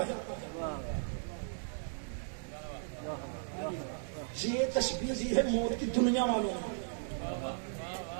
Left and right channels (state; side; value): silent; left; digital silence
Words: ہے. یہ تشبیہ دی ہے موت کی دنیا والوں نے.